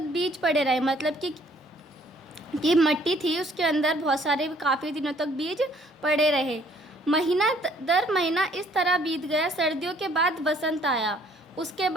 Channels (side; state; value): both; normal; correlation 0.61